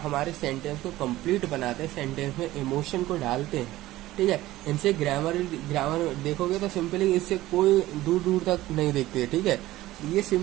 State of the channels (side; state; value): left; quieter; 16.4 dB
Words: हमारे सेंटेंस को कंप्लीट बनाते हैं, सेंटेंस में इमोशन को डालते हैं। ठीक है, इनसे ग्रामर देखोगे तो सिंपली इससे कोई दूर दूर तक नहीं देखते। ठीक है, ये